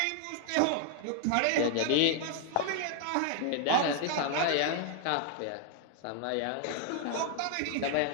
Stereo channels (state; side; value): different; both; correlation 0.00